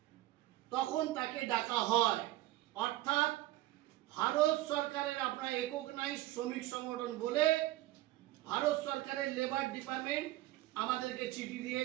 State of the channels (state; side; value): quieter; left; 16.3 dB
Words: তখন তাকে ডাকা হয়। অর্থাৎ ভারত সরকারের আপনার রেকগনাইজ শ্রমিক সংগঠন বলে ভারত সরকারের লেবার ডিপার্টমেন্ট আমাদেরকে চিঠি দিয়ে